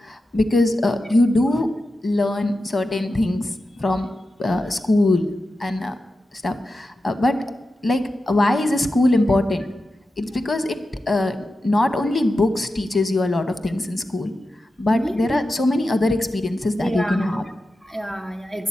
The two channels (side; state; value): both; normal; correlation 0.91